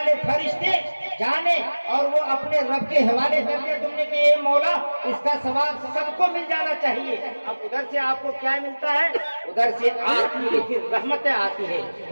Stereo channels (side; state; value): both; inverted; correlation -1.00